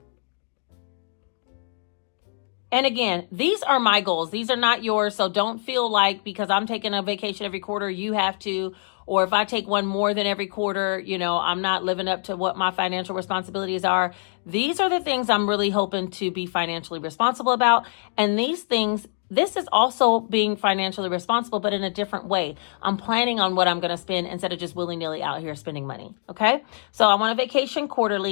And again, these are my goals. These are not yours. So don't feel like because I'm taking a vacation every quarter, you have to. Or if I take one more than every quarter, I'm not living up to what my financial responsibilities are. These are the things I'm really hoping to be financially responsible about. And these things, this is also being financially responsible, but in a different way. I'm planning on what I'm going to spend instead of just willy-nilly out here spending money. Okay. So I want a vacation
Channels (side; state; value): right; silent; 62 dB below the other